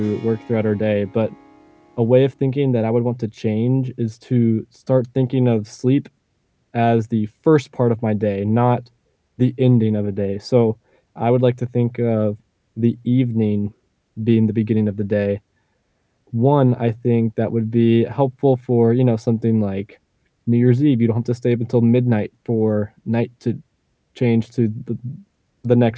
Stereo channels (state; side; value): identical; both; correlation 1.00